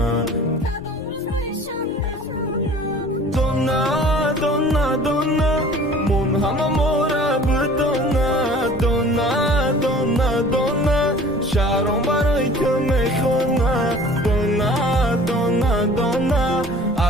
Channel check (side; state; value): both; normal; correlation 0.47